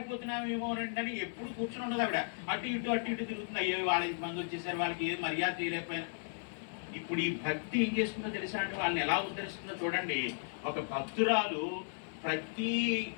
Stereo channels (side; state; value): right; silent; 54 dB below the other